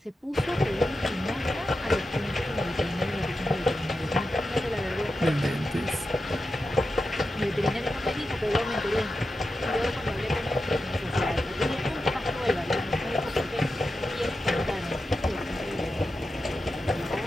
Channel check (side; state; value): both; normal; correlation 0.90